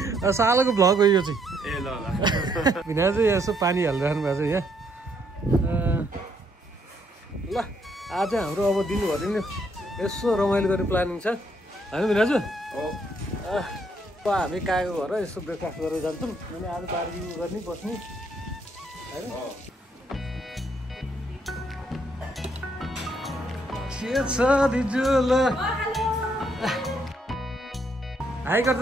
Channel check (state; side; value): normal; both; correlation 0.72